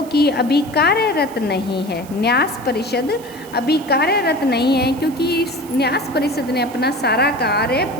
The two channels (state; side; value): noise; right; hiss, 21 dB below the sound